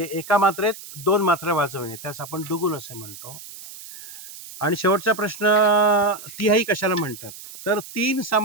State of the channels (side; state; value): right; noise; hiss, 15 dB below the sound